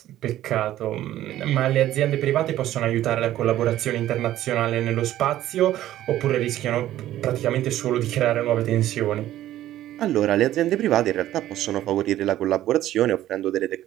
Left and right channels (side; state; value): left; quieter; 13.5 dB